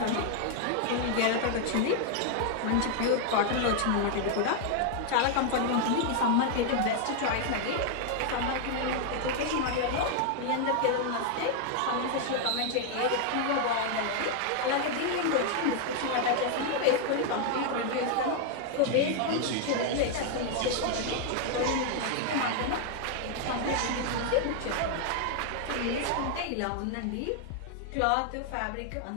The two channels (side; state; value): both; different; correlation 0.00